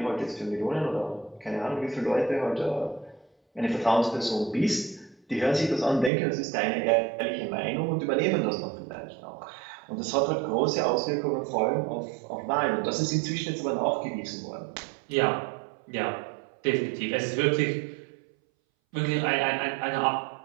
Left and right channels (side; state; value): left; drops out; at 6.1 s